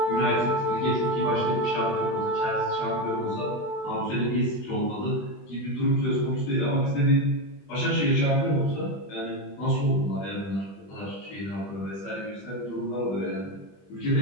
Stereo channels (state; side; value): late; right; 20 ms